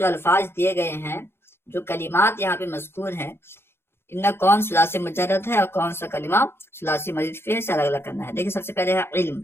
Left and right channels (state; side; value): late; right; 0.11 ms